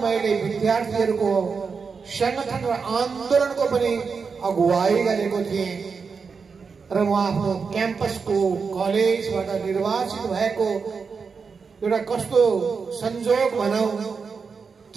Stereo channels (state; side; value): quieter; left; 5.3 dB